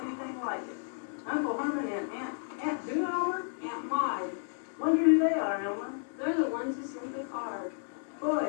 anything like it. Uncle Herman and Aunt who, Elmer? Aunt Maud. Wonder who they are, Elmer. They're the ones who sent the card. Boy,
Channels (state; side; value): silent; right; digital silence